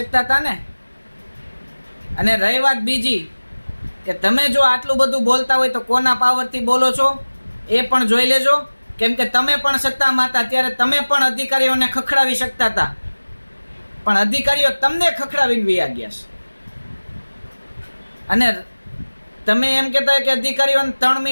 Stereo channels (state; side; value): inverted; both; correlation -1.00